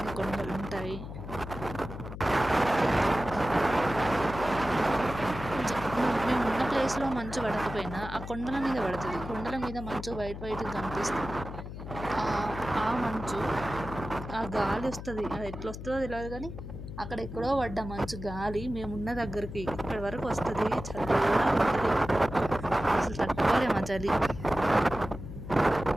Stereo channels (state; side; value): noise; left; hum, 10 dB below the sound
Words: కొండలు ఉంటాయి. మేము ఉన్న ప్లేస్లో మంచు పడకపోయినా ఆ కొండల మీద పడుతుంది. కొండల మీద మంచు వైట్ కనిపిస్తుంది. ఆ మంచు ఆ గాలి వస్తుంది, అది ఎట్లా వస్తుందో తెలియదు కానీ అక్కడ ఎక్కడో పడ్డ మంచు గాలి మేమున్న దగ్గరికి ఇక్కడి వరకు వస్తుంది. చల్లగా అసలు తట్టుకోలేము ఆ చలి.